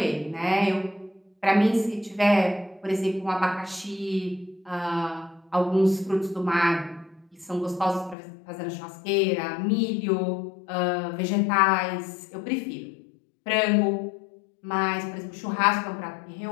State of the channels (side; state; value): right; drops out; at 8.2 s